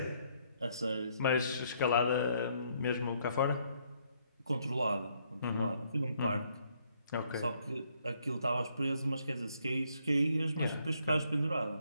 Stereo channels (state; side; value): inverted; both; correlation -0.70